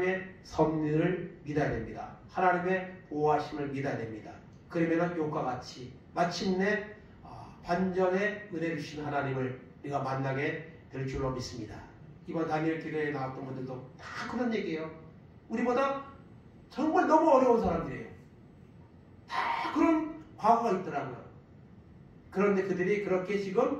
섭리를 믿어야 됩니다. 하나님의 보호하심을 믿어야 됩니다. 그러면 욥과 같이 마침내 반전의 은혜를 주신 하나님을 우리가 만나게 될 줄로 믿습니다. 이번 다니엘 기도에 나왔던 분들도 다 그런 얘기예요. 우리보다 정말 너무 어려운 사람들이에요. 다 그런 과거가 있더라고요. 그런데 그들이 그렇게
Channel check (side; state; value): both; identical; correlation 1.00